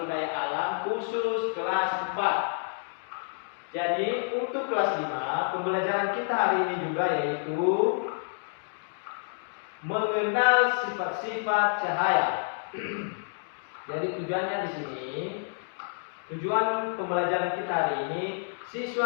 daya alam khusus kelas 4. Jadi untuk kelas 5 pembelajaran kita hari ini juga yaitu mengenal sifat-sifat cahaya. Jadi tujuannya di sini, tujuan pembelajaran kita hari ini,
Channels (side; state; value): right; silent; digital silence